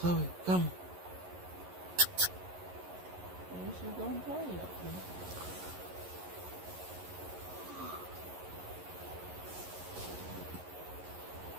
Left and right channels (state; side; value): late; left; 11 ms